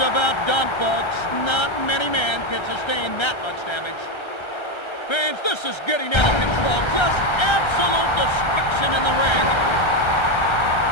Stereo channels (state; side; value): late; right; 1.3 ms